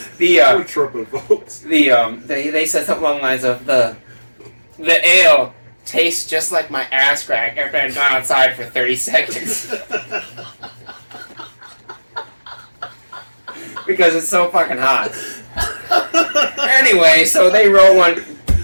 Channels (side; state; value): both; inverted; correlation -1.00